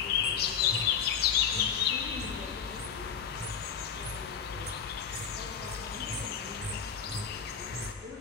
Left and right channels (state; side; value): quieter; right; 7.2 dB